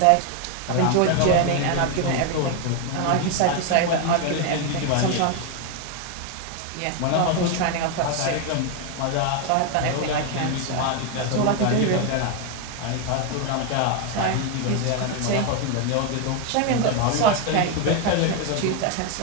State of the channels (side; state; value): both; different; correlation 0.01